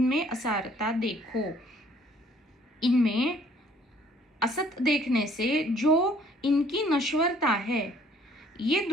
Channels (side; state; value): both; normal; correlation 0.59